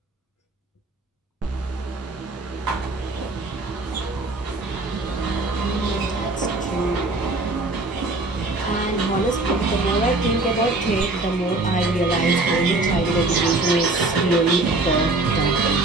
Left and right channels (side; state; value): left; quieter; 3.1 dB